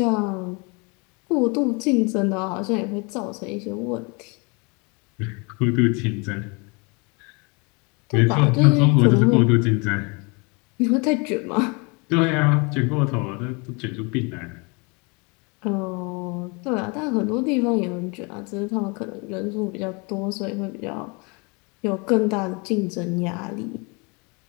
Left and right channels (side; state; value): right; quieter; 30.7 dB